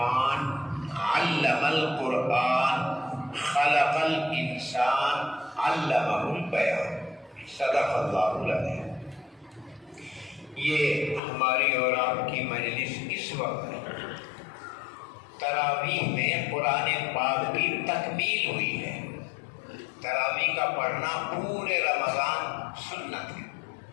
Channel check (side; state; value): right; drops out; at 11.2 s